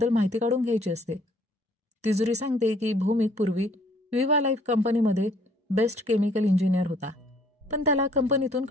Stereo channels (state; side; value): normal; both; correlation 0.60